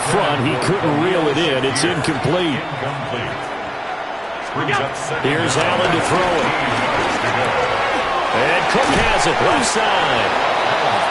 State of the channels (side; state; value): both; identical; correlation 1.00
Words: front. He couldn't reel it in. It's incomplete. Here's Allen to throw it. And Cook has it left side.